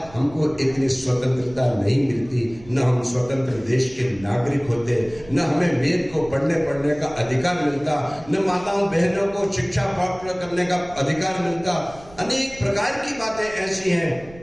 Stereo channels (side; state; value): right; noise; rumble, 21 dB below the sound